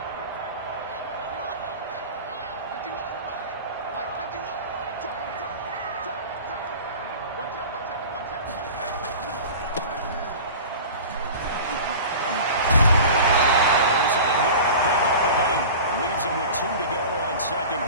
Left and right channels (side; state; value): both; inverted; correlation -0.36